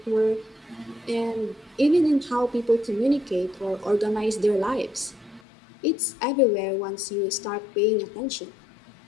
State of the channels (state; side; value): drops out; right; at 5.4 s